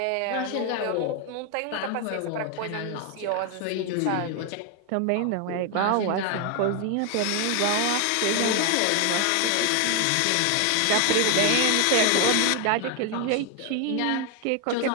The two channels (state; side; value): different; both; correlation 0.01